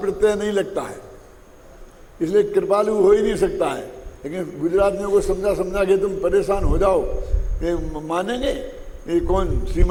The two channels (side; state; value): both; identical; correlation 1.00